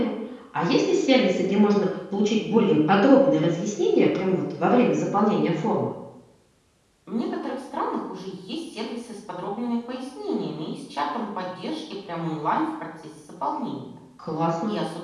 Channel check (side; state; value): both; identical; correlation 1.00